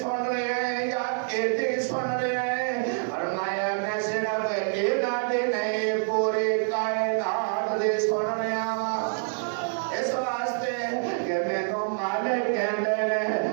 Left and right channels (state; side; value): silent; left; digital silence